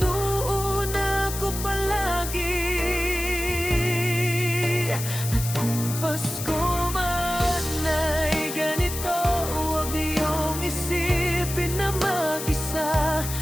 ko palagi. At kung Pasko man ay ganito, huwag niyong isipin na mag-isa.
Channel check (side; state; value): left; noise; hiss, 7 dB below the sound